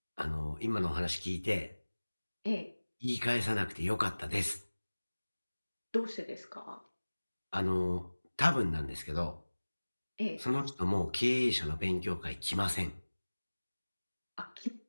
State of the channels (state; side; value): inverted; both; correlation -1.00